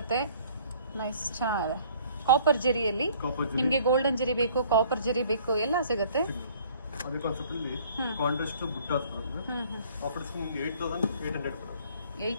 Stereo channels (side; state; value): both; inverted; correlation -0.56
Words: ನೈಸ್, ಚೆನ್ನಾಗಿದೆ. ಕಾಪರ್ ಜರಿಯಲ್ಲಿ ನಿಮ್ಗೆ ಗೋಲ್ಡನ್ ಜರಿ ಬೇಕು, ಕಾಪರ್ ಜರಿ ಬೇಕು, ಎಲ್ಲ ಸಿಗುತ್ತೆ. ಅದೇ ಕಾನ್ಸೆಪ್ಟ್ ಅಲ್ಲಿ ಕಾಂಟ್ರಾಸ್ಟ್ ಬುಟ್ಟಾಸ್ ಬರುತ್ತೆ. ಆಫರ್ ಡಿಸ್ಕೌಂಟ್ 8800 ಬರುತ್ತೆ.